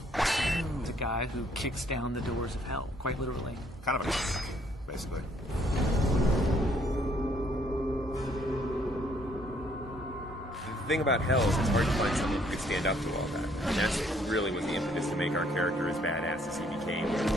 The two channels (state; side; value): normal; both; correlation 0.66